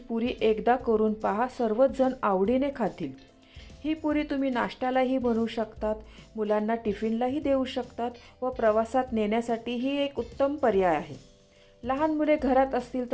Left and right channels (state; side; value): identical; both; correlation 1.00